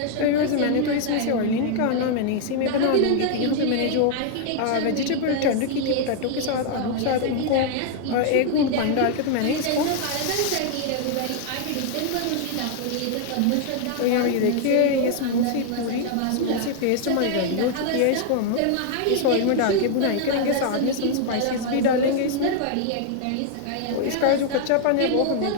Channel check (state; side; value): different; both; correlation 0.00